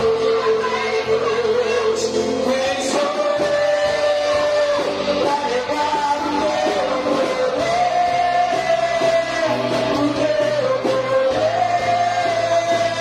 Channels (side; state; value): both; identical; correlation 1.00